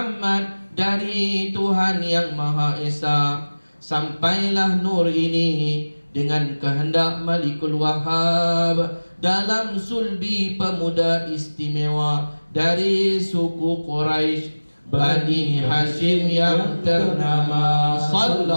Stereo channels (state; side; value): inverted; both; correlation -1.00